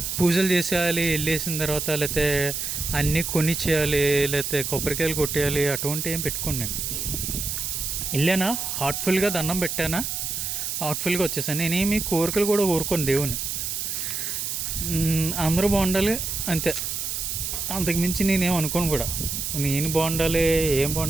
పూజలు చేసేయాలి, వెళ్ళేసిన తర్వాత లేకపోతే అన్నీ కొనిచ్చేయాలి, లేకపోతే కొబ్బరికాయలు కొట్టేయాలి, అటువంటి ఏం పెట్టుకోండి. నేను వెళ్ళానా, హార్ట్ఫుల్గా దండం పెట్టానా, హార్ట్ఫుల్గా వచ్చేసాను. నేనేమి కోరికలు కూడా కోరుకోను దేవుని, అందరూ బాగుండాలి అంతే, అంతకుమించి నేనేం అనుకోను కూడా. నేను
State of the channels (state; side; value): noise; right; hiss, 3 dB below the sound